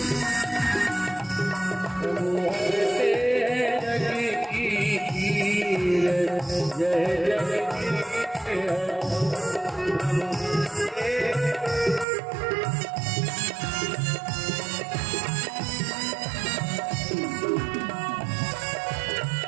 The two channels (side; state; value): left; drops out; at 12.1 s